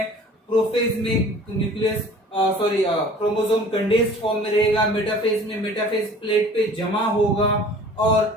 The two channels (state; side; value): normal; both; correlation 0.47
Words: प्रोफेज में न्यूक्लियस क्रोमोसोम कंडेंस्ड फॉर्म में रहेगा, मेटाफेज में मेटाफेज प्लेट पे जमा होगा